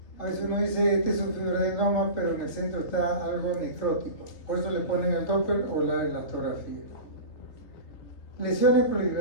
A veces uno dice, este es un fibroadenoma, pero en el centro está algo necrótico. Por eso le ponen el Doppler o la elastografía. Lesiones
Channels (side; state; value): right; late; 3.3 ms